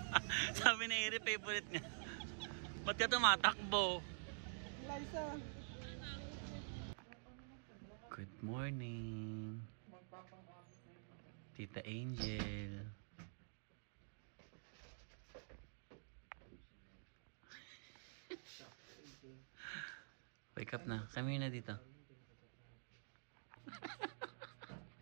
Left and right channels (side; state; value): left; silent; digital silence